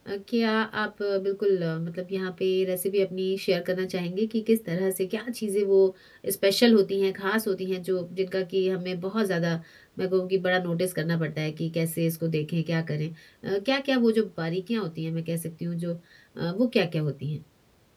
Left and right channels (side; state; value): both; identical; correlation 1.00